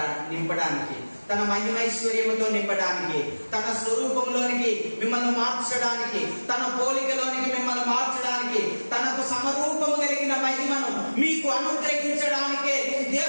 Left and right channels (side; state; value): both; inverted; correlation -1.00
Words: నింపడానికి, తన మహిమైశ్వర్యముతో నింపడానికి, తన స్వరూపంలోనికి మిమ్మల్ని మార్చడానికి, తన పోలికలోనికి మిమ్మల్ని మార్చడానికి, తనకు సమరూపము కలిగిన మహిమను మీకు అనుగ్రహించడానికే